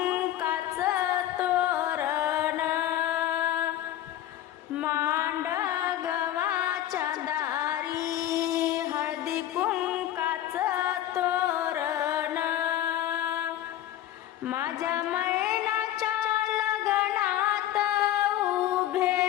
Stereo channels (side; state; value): right; quieter; 12.7 dB